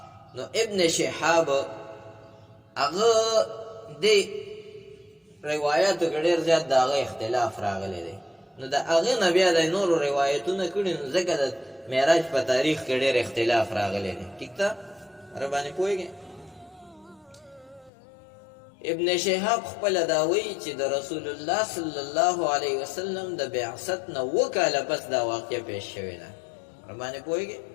نو ابن شهاب هغه د روایاتو کې ډېر زیات د هغه اختلاف راغلی دی. نو د هغې نه بیا د نورو روایتونه کړي، نو ځکه د معراج په تاریخ کې ډېر اختلاف راغلی دی. ټیک ده. خبره باندې پوهېږئ؟ ابن شهاب خپله دا وایي چې د رسول الله صلی الله علیه وسلم د بعثت نه 2 کاله پس دا واقعه پیش شوې ده. خبره باندې پوهېږئ؟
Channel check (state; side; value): drops out; right; at 17.9 s